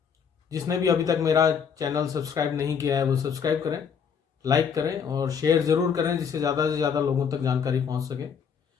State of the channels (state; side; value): quieter; right; 6.9 dB